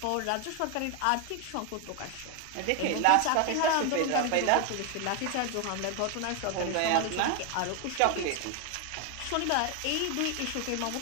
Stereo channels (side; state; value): both; different; correlation 0.01